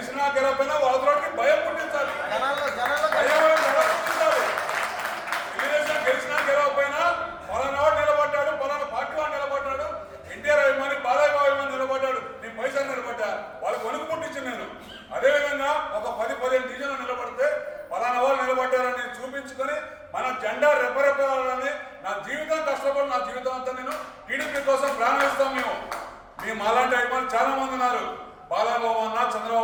గెలవైనా వాళ్ళకి భయం పుట్టించాలి. తెలుగుదేశం గెలిచినా గెలవకపోయినా పలానా వాడు నిలబడ్డాడు, పలానా పార్టీ వాడు నిలబడ్డాడు, ఎన్టీఆర్ అభిమాని బాలయ్య అభిమాని నిలబడ్డాడు, నేను పైసలు నిలబడ్డా, వాళ్ళకి వణుకు పుట్టించింది నేను. అదేవిధంగా ఒక 10-15 డివిజన్లు నిలబడితే పలానా వాళ్ళు నిలబడ్డారని చూపించుకొని మన జెండా రెపరెపాలని నా జీవితం కష్టపడి నా జీవితం అంతా నేను టీడీపీ కోసం ప్రాణం ఇస్తాం. మేము అలాంటి అభిమానులు చాలా మంది ఉన్నారు. బాలబాబు అన్న,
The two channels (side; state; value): both; identical; correlation 1.00